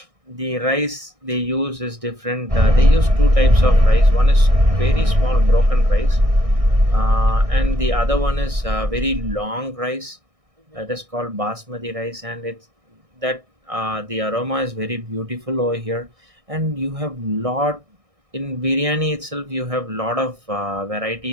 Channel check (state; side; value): late; left; 1.6 ms